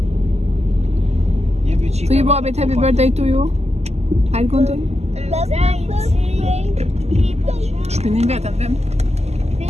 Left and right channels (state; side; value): late; left; 0.31 ms